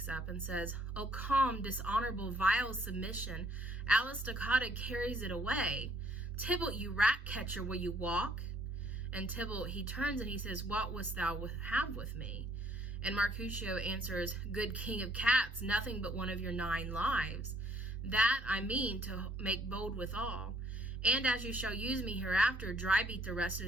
up and says, O calm, dishonorable, vile submission, Alice Stoccata carries it away. Tybalt, you rat catcher, will you walk? And Tybalt, he turns and he says, what wouldst thou have with me? And Mercutio answers, good king of cats, nothing but one of your 9 lives. That I mean to make bold withal. And as you shall use me hereafter, dry beat the rest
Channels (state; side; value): normal; both; correlation 0.63